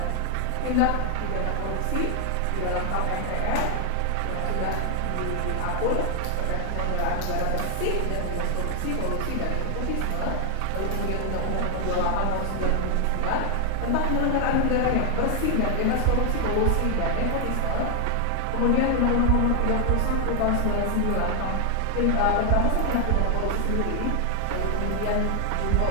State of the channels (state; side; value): different; both; correlation 0.00